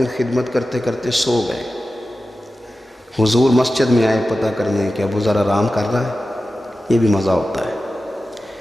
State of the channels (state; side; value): normal; both; correlation 0.94